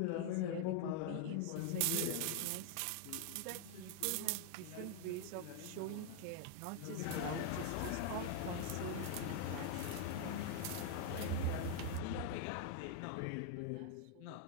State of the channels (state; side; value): different; both; correlation 0.00